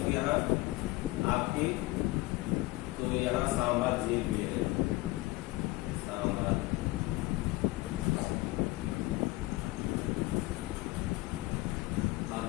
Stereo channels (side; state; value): right; quieter; 20.4 dB